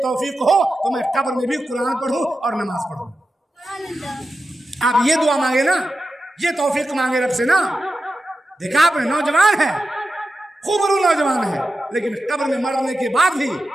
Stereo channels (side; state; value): both; normal; correlation 0.91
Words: तौफीक हो तो मैं कब्र में भी कुरान पढ़ूँ और नमाज पढ़ूँ। आप ये दुआ मांगे ना, ये तौफीक मांगे रब से ना। देखा आपने, नौजवान है, खूबरू नौजवान है, लेकिन कब्र में मरने के बाद भी